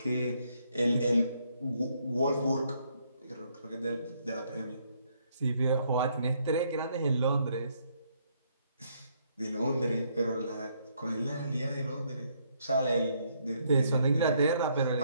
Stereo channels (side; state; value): both; inverted; correlation -0.71